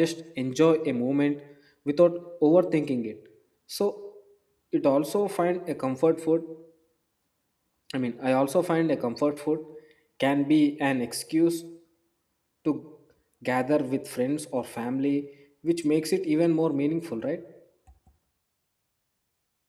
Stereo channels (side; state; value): both; identical; correlation 1.00